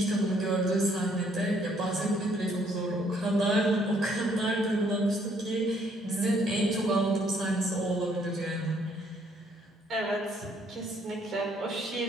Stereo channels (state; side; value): normal; both; correlation 0.67